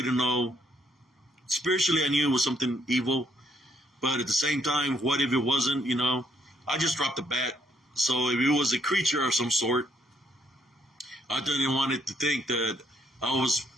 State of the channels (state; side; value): normal; both; correlation 0.71